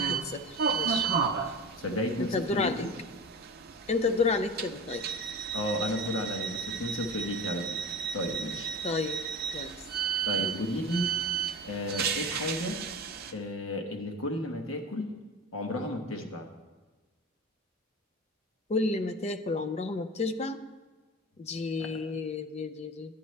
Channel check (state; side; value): normal; both; correlation 0.30